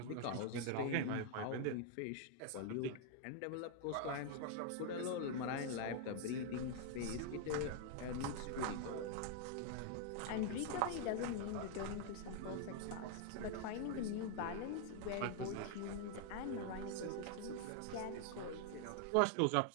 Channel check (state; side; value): different; both; correlation 0.00